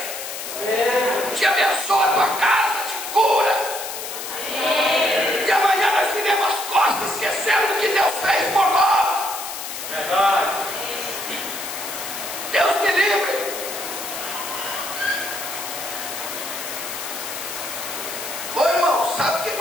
Te abençoa a tua casa, te cura. E amanhã nós viremos as costas, esquecendo do que Deus fez por nós. Deus me livre. Ô irmão, sabe por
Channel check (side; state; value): left; noise; hiss, 7 dB below the sound